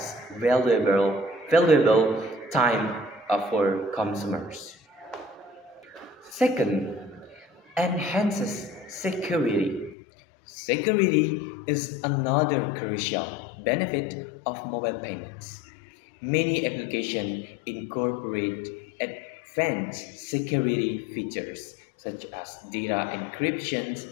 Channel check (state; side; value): drops out; right; at 10.0 s